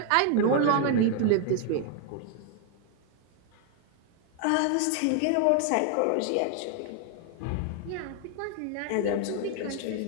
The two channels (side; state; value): both; different; correlation 0.00